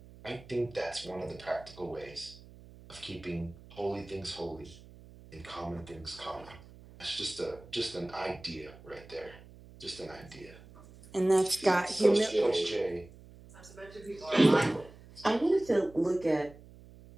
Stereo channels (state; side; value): noise; right; hum, 20 dB below the sound